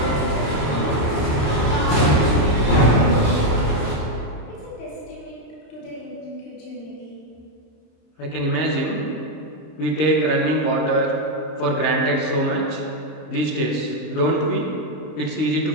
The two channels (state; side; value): late; right; 27 ms